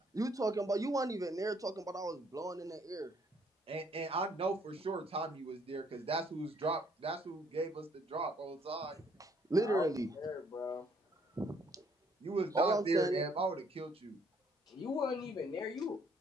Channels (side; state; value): both; normal; correlation 0.65